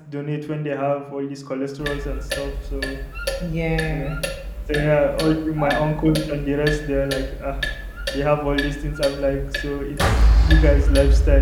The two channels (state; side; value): identical; both; correlation 1.00